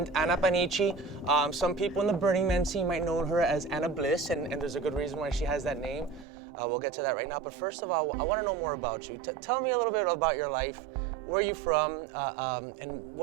Anna Panici. Some people in the Burning Man scene might know her as Anna Bliss, and there's a good reason why she has that name. We'll get to that right now. But first of all, I want to know more about you. Tell me a little bit about your life. Where are you from? And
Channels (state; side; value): drops out; left; at 6.2 s